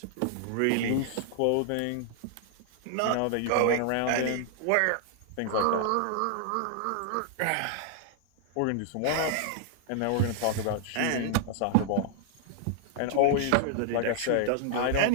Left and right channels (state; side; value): different; both; correlation 0.00